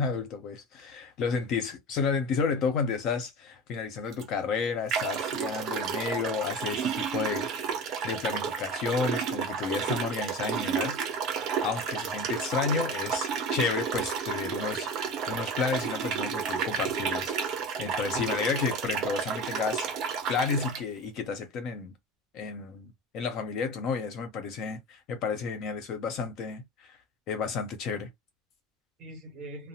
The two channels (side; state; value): both; normal; correlation 0.30